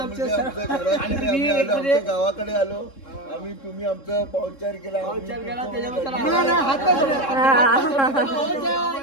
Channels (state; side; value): late; right; 3.7 ms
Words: आमच्या गावाकडे आलो आम्ही. तुम्ही आमचा पाहुणचार केला.